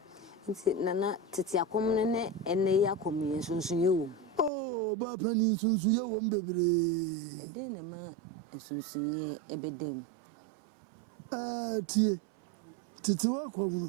nti nana tete akom ne ene ya komi sunsun ye wo oh ba pani sunsun ye wo mbebre ede ne ma sunsun ye ebedem tie tete wa kom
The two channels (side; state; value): left; drops out; at 4.5 s